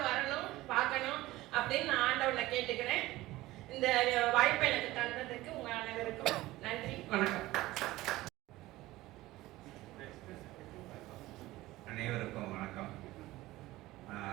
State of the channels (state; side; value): quieter; left; 17.7 dB